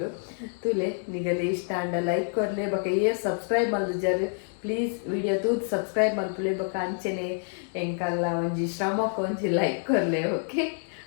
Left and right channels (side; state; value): right; silent; 60 dB below the other